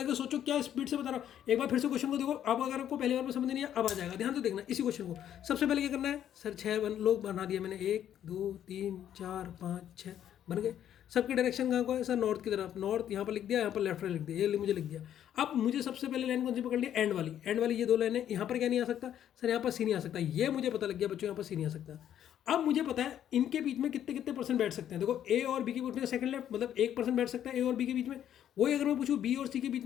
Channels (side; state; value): right; quieter; 10.4 dB